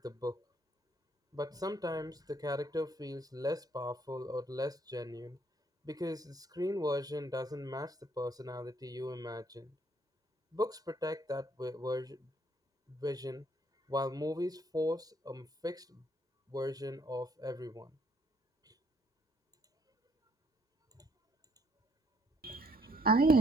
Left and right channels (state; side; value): normal; both; correlation 0.68